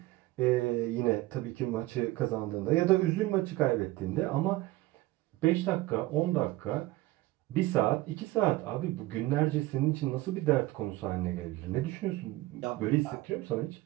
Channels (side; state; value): left; quieter; 18.3 dB